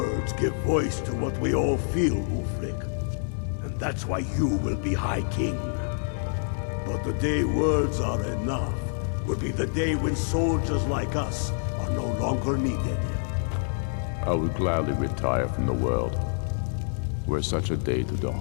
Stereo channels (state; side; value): silent; right; digital silence